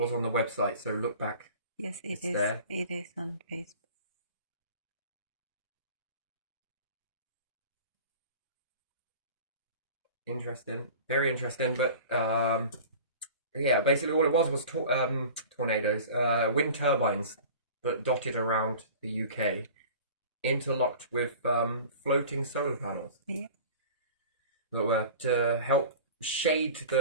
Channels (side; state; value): both; inverted; correlation -0.40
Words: on the website. So look back. Yes, it's there. It is on Facebook. Interesting. Very interesting. But yeah, basically all it was tornadoes, wind turbines that dotted around the UK, interlocked with floating solar panels. Yeah. That were to help shade